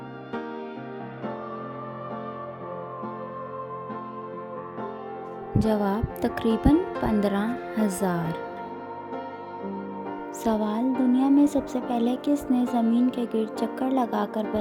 जवाब: तकरीबन 15,000। सवाल: दुनिया में सबसे पहले किसने ज़मीन के गिर्द चक्कर लगाकर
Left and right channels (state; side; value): identical; both; correlation 1.00